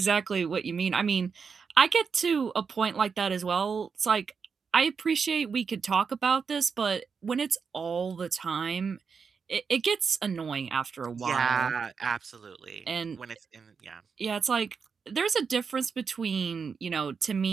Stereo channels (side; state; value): left; quieter; 5.7 dB